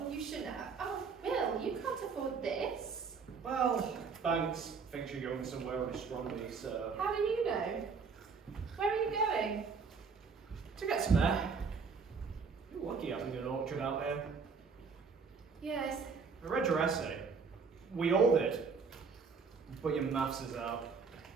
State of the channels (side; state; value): left; quieter; 5.3 dB